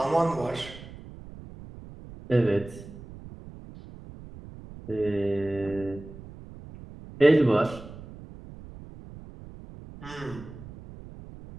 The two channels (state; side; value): noise; right; rumble, 16 dB below the sound